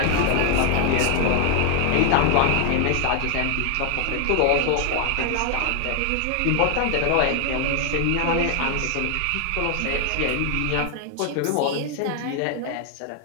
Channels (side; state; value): both; different; correlation 0.00